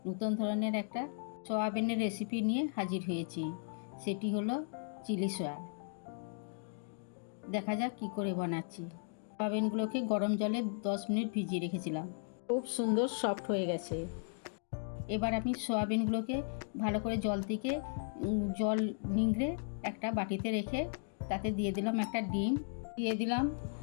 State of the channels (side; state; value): right; silent; digital silence